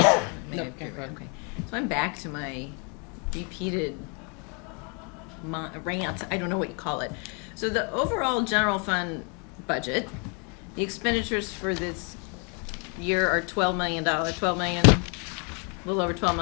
So I'm back to my repeated rant. I don't know what you call it. So the overall general fund budget, the expenditures for this year are $12 million. A little over $12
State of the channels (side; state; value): right; quieter; 34.7 dB